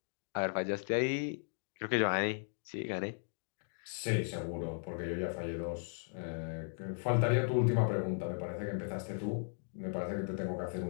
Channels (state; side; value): silent; right; digital silence